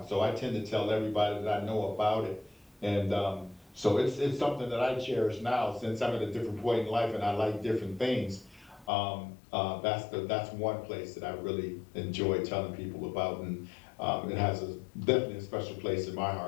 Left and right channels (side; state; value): right; drops out; at 8.9 s